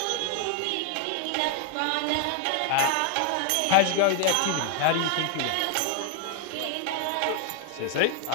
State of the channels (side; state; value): both; different; correlation 0.00